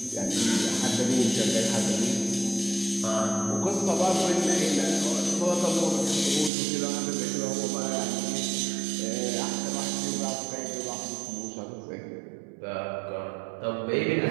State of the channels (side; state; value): left; drops out; at 6.5 s